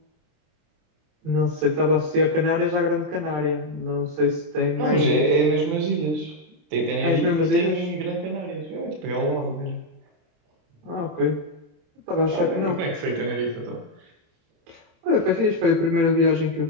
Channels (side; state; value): left; late; 27 ms